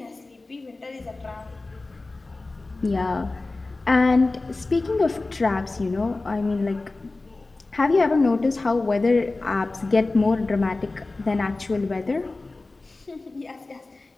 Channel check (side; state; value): right; quieter; 3.3 dB